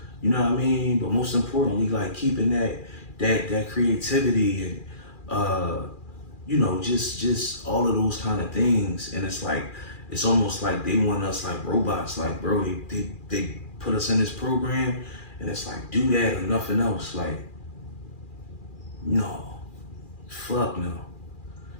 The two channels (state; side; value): late; right; 2.4 ms